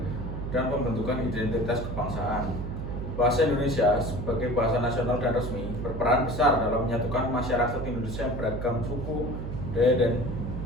dan pembentukan identitas kebangsaan. Bahasa Indonesia sebagai bahasa nasional dan resmi berperan besar dalam menyatukan masyarakat Indonesia yang beragam suku, budaya, dan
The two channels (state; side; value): noise; right; hum, 5 dB below the sound